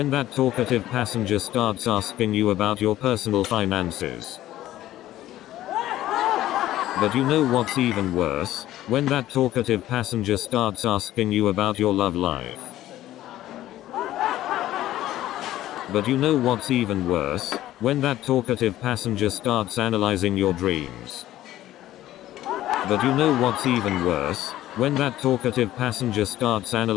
that talkative passenger starts asking you about your personal finances. But you know what's even worse? When that talkative passenger starts asking you about your love life. But you know what's even worse? When that talkative passenger starts analyzing your dreams. But you know what's even worse? When that talkative passenger starts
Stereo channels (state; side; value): quieter; right; 14.2 dB